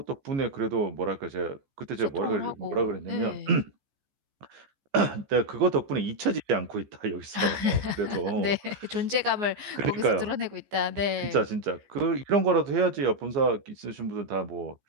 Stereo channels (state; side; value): late; left; 15 ms